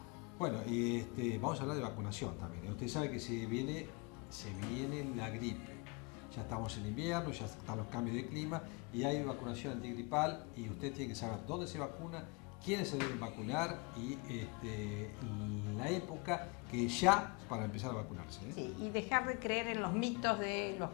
Bueno, y vamos a hablar de vacunación también. Usted sabe que se viene la gripe. Ya estamos en invierno, ya están los cambios de clima y hay vacunación antigripal y usted tiene que saber dónde se vacuna, quiénes se deben vacunar y la época que ya para empezar a vacunarse. Sí, y dejar de creer en los mitos de los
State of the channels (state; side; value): quieter; right; 30.1 dB